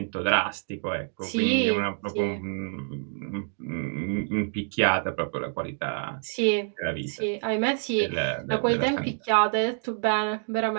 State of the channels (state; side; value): silent; left; digital silence